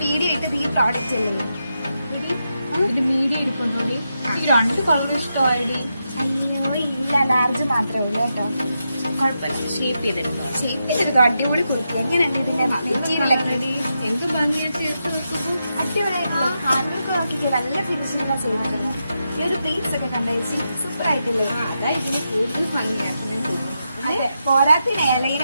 വീഡിയോ ഇട്ടത് ഈ പ്രോഡക്റ്റ് അല്ലേ? ഇത് മീഡിയം എടുക്കൊണ്ടോടി. എനിക്ക് 2 കളർ ഇഷ്ടമായിടി. അയ്യോ ഇല്ല, ലാർജ് മാത്രമേ ഉള്ളൂ കേട്ടോ. കുഴപ്പമില്ല, ഷേപ്പ് ചെയ്തെടുത്തോ. ഷേപ്പിലെടുത്തോ, അടിപൊളി കുർത്തി. എങ്ങനെയുണ്ട് ഇതിന്റെ മെറ്റീരിയലൊക്കെ? എന്ത് ഭംഗിയാ ചേർത്ത് വെക്കുമ്പോ. അടിപൊളിയായിട്ടുള്ള ഹാൻഡ്ബാഗ് നോക്കിയിട്ട് നല്ല ഫിനിഷിംഗാണ് ചെയ്യുന്നത്. ഈ ഒരു പ്ലേറ്റ്സ് ഒക്കെ കണ്ടേച്ച് സൂപ്പർ ആയിട്ടില്ലേ? അതാ ഇതിന് കൂടുതൽ ഭംഗിയാക്കി ഞാൻ തോന്നുന്നു. അതെ, പോരാത്തിന്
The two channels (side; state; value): both; inverted; correlation -0.86